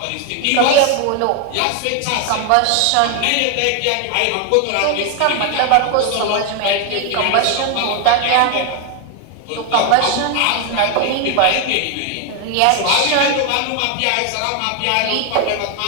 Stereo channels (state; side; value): different; both; correlation 0.01